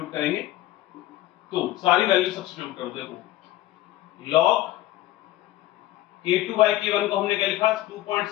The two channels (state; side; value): quieter; right; 15.5 dB